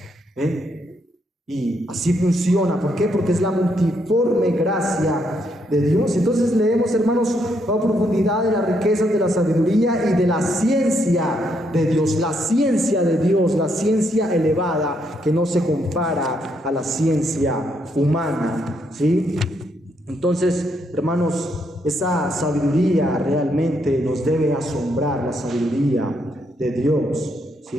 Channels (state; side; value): normal; both; correlation 0.75